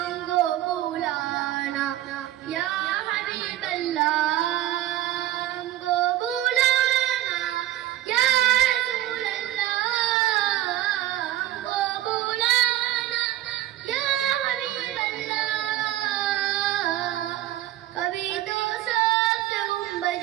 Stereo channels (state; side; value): quieter; left; 14.1 dB